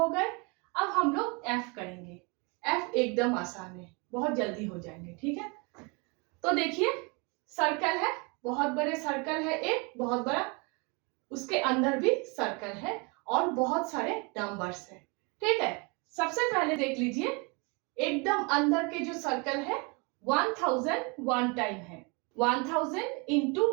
गए। अब हम लोग एफ करेंगे। एफ एकदम आसान है, बहुत जल्दी हो जाएंगे। ठीक है, तो देखिए सर्कल है, बहुत बड़े सर्कल है, एक बहुत बड़ा, उसके अंदर भी सर्कल है और बहुत सारे नंबर्स है। ठीक है, सबसे पहले देख लीजिए, एकदम अंदर के जो सर्कल है 1000 वन टाइम है, 1000 इंटू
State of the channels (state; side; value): quieter; left; 30.6 dB